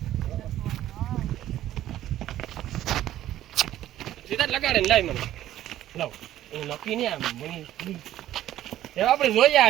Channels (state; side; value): quieter; left; 13.1 dB